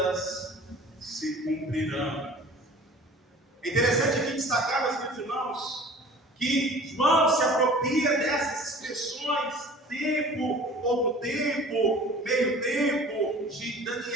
se cumprirão. É interessante aqui destacar, meus queridos irmãos, que João se apropria dessas expressões, tempo, outro tempo, meio tempo, de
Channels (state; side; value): normal; both; correlation 0.45